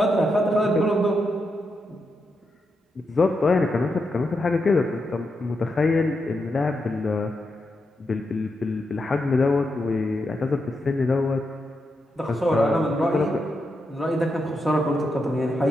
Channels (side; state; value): both; normal; correlation 0.85